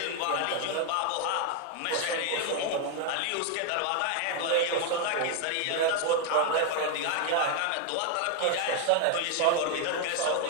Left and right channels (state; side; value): different; both; correlation 0.01